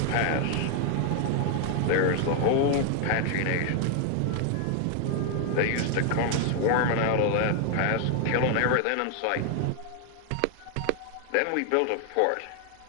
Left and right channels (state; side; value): different; both; correlation 0.00